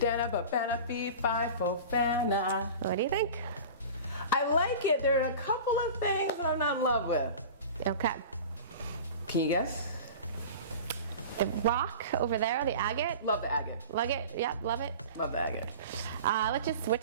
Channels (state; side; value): inverted; both; correlation -0.36